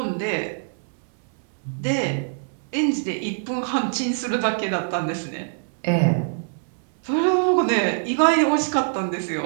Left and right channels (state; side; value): silent; left; 61 dB below the other